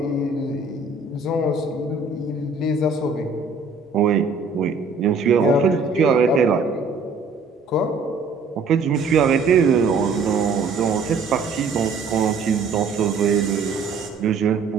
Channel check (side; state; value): left; quieter; 4.3 dB